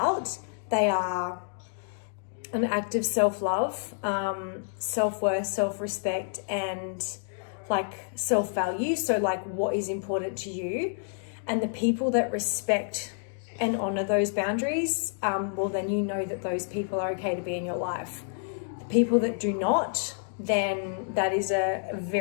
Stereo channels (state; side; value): silent; right; digital silence